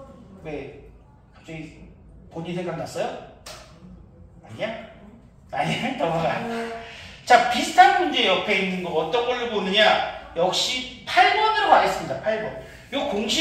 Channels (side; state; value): both; identical; correlation 1.00